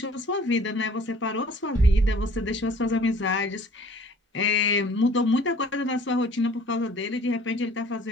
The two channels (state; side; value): normal; both; correlation 0.52